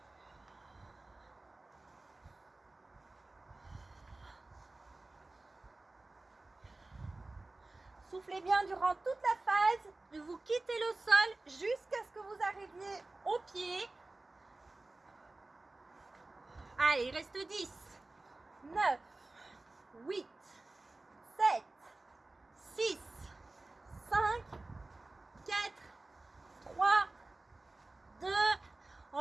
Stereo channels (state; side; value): quieter; left; 3.1 dB